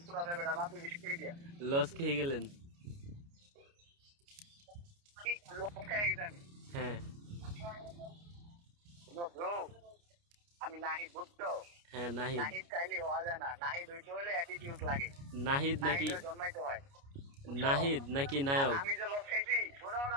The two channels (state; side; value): late; left; 29 ms